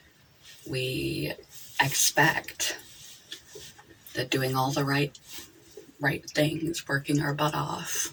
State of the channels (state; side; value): identical; both; correlation 1.00